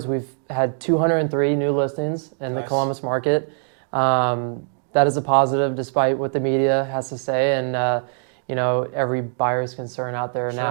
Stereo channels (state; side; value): silent; left; digital silence